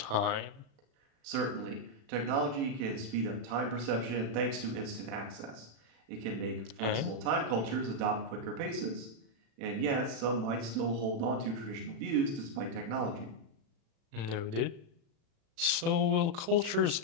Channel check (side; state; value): left; late; 36 ms